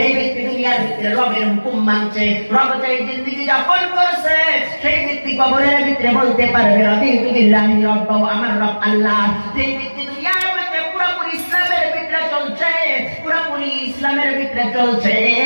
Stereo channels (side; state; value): both; inverted; correlation -1.00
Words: ব্যক্তি দুনিয়ার ভিতরে রবের হুকুম মানছে, রব চাই জিন্দেগি যাপন করছে, সেই ব্যক্তি কবরের ভিতরে বলতে পারবে রাদিতু বিল্লাহি রাব্বাও, আমার রব আল্লাহ। যে ব্যক্তি দুনিয়ার ভিতরে পুরোপুরি ইসলামের ভিতরে চলছে, পুরোপুরি ইসলামের ভিতরে চলছে,